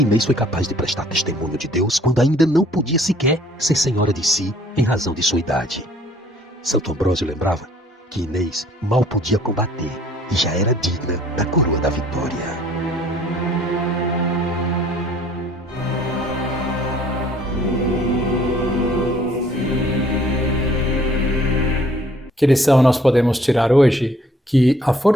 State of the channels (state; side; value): normal; both; correlation 0.58